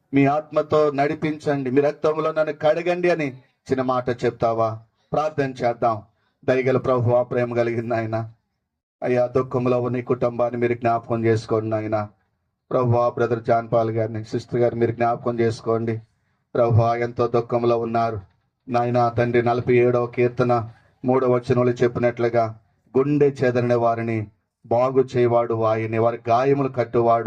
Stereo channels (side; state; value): both; identical; correlation 1.00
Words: మీ ఆత్మతో నడిపించండి, మీ రక్తంలో నన్ను కడగండి అని చిన్న మాట చెప్తావా? ప్రార్థన చేద్దాం. దయగల ప్రభువా, ప్రేమ కలిగింది ఆయన. అయ్యా, దుఃఖంలో ఉన్న ఈ కుటుంబాన్ని మీరు జ్ఞాపకం చేసుకోండి ఆయన. ప్రభువా, బ్రదర్ జాన్ పాల్ గారిని, సిస్టర్ గారిని మీరు జ్ఞాపకం చేసుకోండి. ప్రభువా, ఎంతో దుఃఖంలో ఉన్నారు నాయన. తండ్రి, 47వ కీర్తన 3వ వచనంలో చెప్పినట్లుగా గుండె చెదరిన వారిని బాగు చేయవాడు ఆయనే, వారి గాయములు